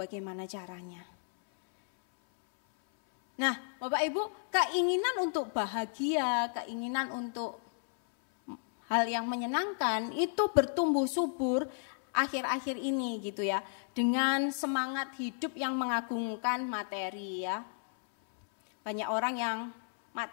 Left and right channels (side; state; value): right; silent; 56 dB below the other